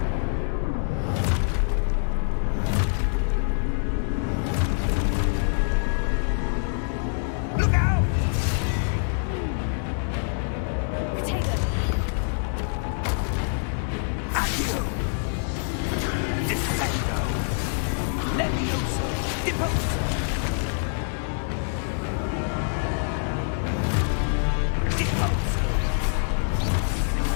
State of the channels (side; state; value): right; silent; 61 dB below the other